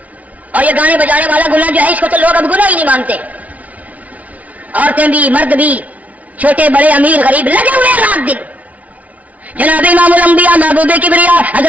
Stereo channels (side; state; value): left; late; 0.069 ms